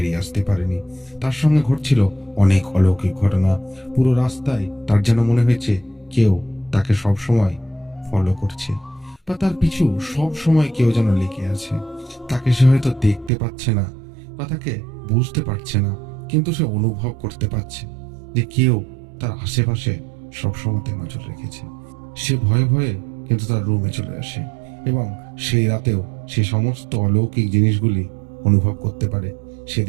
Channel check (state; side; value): drops out; left; at 13.3 s